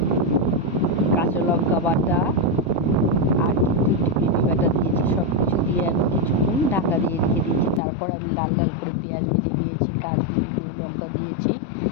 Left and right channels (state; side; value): drops out; right; at 7.8 s